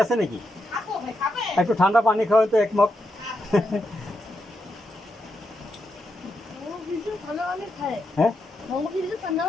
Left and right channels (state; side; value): normal; both; correlation 0.83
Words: আছে নাকি? একটু ঠান্ডা পানি খাওয়ান তো এক মগ। হ্যাঁ,